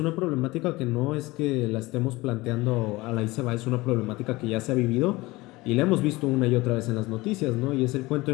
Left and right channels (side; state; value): right; quieter; 21.0 dB